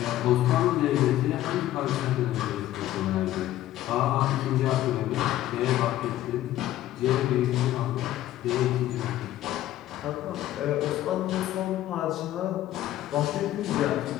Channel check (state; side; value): quieter; right; 13.8 dB